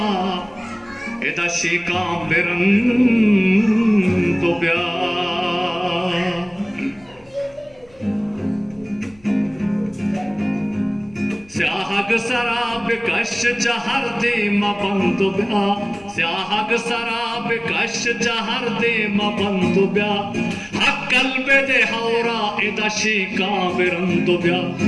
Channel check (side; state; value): left; noise; rumble, 29 dB below the sound